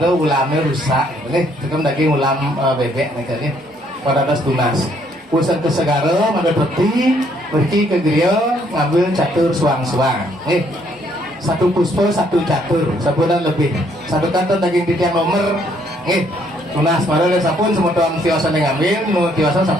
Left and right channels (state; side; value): normal; both; correlation 0.68